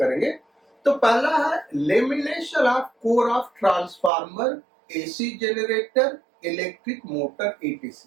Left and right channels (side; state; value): left; drops out; at 4.1 s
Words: तो पहला है lamination of core of transformer, AC generator, electric motor,